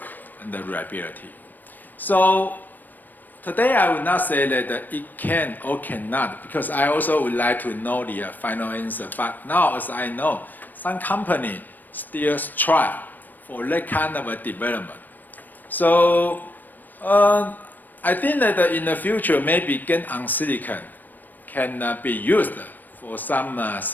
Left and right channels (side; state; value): right; late; 0.088 ms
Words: and the reliability. So today I would not say that it can or cannot, because I also would like to know the final answer. But now, as I know, some companies still strive for that kind of a development. So I think that in the future, maybe GaN on silicon can be used for some